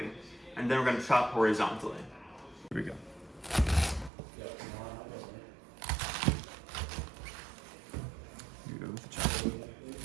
and then we're gonna chop horizontally. Here we go. Here we go with the chop.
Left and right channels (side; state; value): left; drops out; at 4.1 s